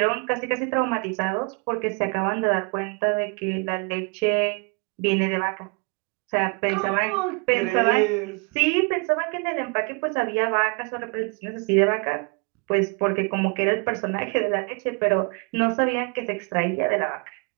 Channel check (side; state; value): left; quieter; 32.2 dB